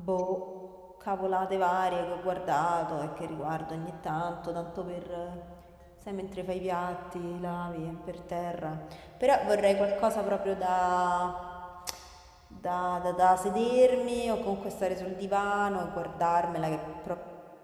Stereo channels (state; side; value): identical; both; correlation 1.00